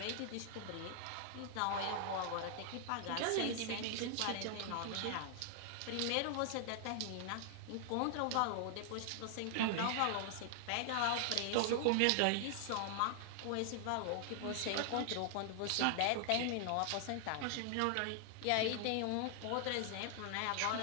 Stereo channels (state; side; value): different; both; correlation 0.00